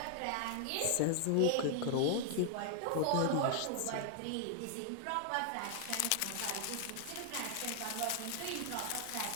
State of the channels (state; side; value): different; both; correlation 0.00